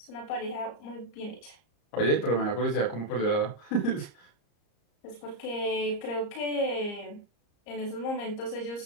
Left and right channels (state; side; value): late; right; 34 ms